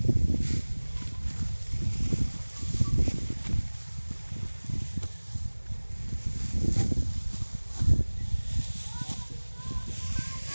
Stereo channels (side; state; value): both; inverted; correlation -1.00